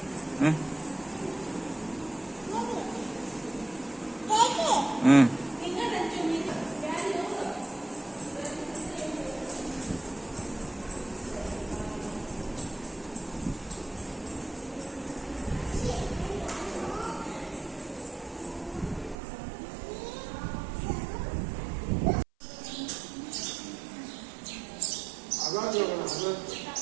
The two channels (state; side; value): drops out; left; at 19.2 s